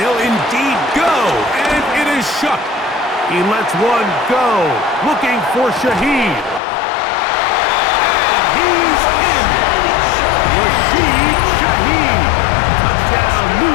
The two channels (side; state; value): right; drops out; at 6.6 s